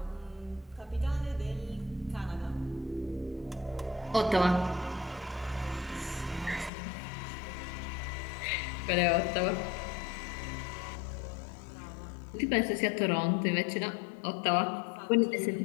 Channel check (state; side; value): drops out; right; at 6.7 s